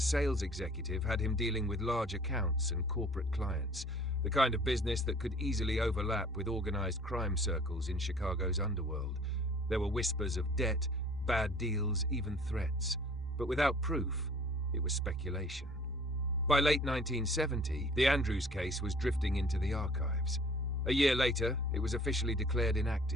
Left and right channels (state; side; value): noise; left; rumble, 26 dB below the sound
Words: executive had him dealing with large accounts and corporate clients, the kind of business that could easily overlap with organized crime circles in Chicago's underworld. There were whispers of debt, bad deals, even threats. But without proof, it was speculation. By late 1970, the Andrews case was drifting into the archives. A year later, it was officially declared